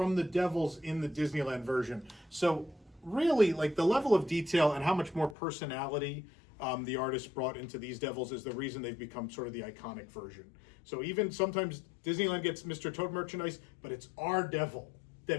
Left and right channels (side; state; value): right; drops out; at 5.4 s